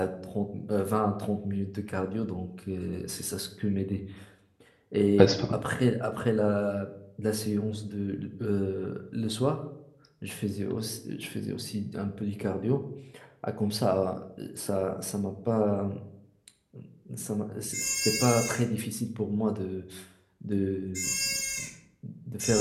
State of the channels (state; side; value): identical; both; correlation 1.00